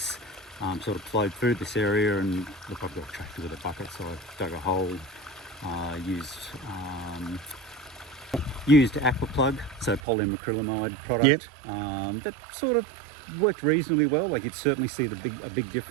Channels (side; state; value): left; drops out; at 10.0 s